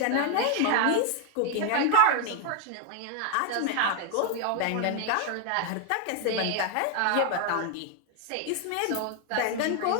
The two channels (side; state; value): both; different; correlation 0.00